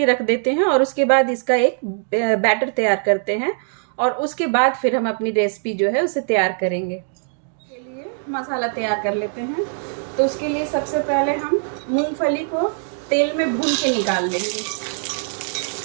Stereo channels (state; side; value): silent; left; 62 dB below the other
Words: रख देते हैं और उसके बाद इसका एक बैटर तैयार करते हैं और उसके बाद फिर हम अपनी रेसिपी जो है उसे तैयार करेंगे। के लिए मसाला तैयार कर लेते हैं। तो उसके लिए सबसे पहले हम मूंगफली को तेल में भून के निकाल लेंगे।